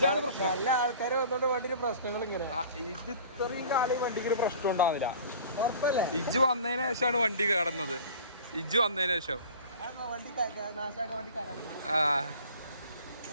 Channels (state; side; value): inverted; both; correlation -0.43